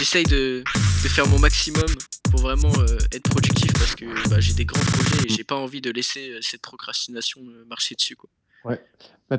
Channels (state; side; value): identical; both; correlation 1.00